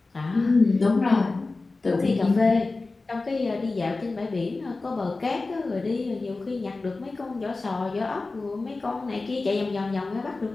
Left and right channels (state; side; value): quieter; right; 3.5 dB